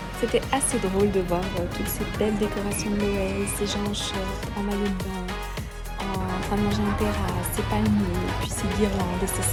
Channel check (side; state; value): both; identical; correlation 1.00